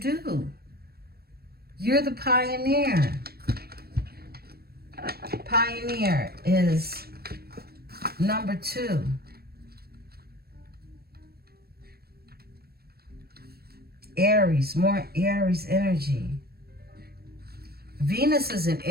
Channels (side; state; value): left; late; 0.45 ms